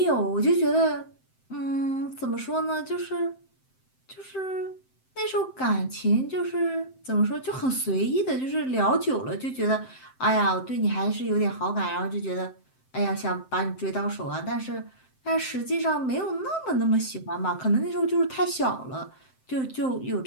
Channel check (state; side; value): late; right; 7.7 ms